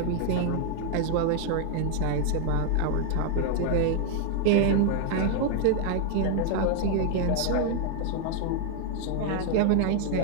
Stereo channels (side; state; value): both; different; correlation 0.00